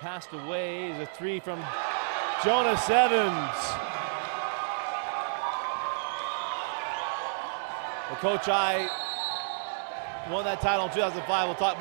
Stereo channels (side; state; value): left; silent; digital silence